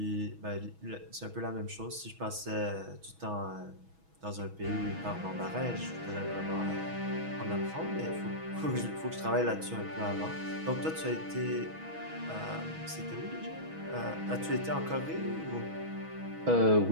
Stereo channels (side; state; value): left; late; 6.2 ms